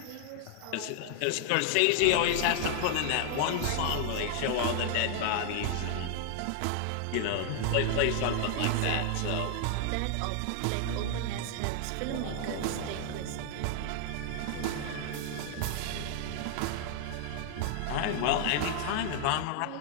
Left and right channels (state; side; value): different; both; correlation 0.00